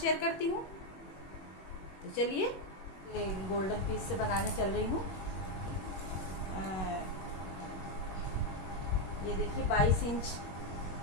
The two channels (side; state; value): right; late; 21 ms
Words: करती हूँ। तो चलिए, ये गोल्डन पीस से बनाने चल रही हूँ। ये देखिए 22 इंच